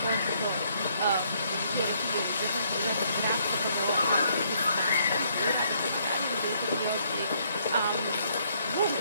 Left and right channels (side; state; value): both; inverted; correlation -0.69